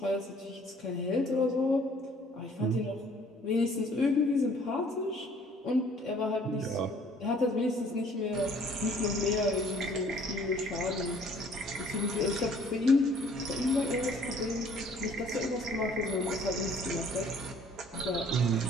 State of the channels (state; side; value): normal; both; correlation 0.57